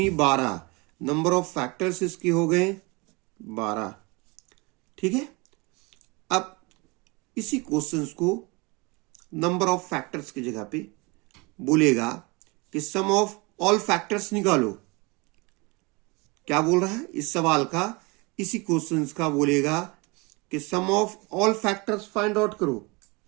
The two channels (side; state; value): left; quieter; 27.0 dB